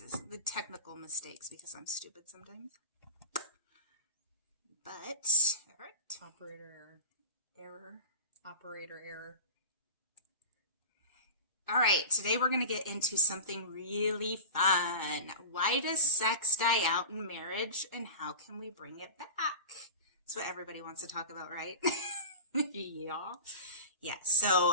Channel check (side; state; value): both; inverted; correlation -0.32